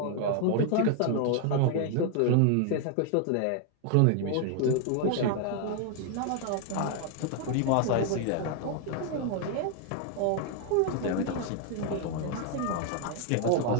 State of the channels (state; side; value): different; both; correlation 0.00